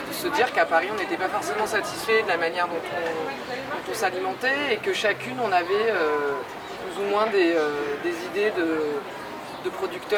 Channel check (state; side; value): identical; both; correlation 1.00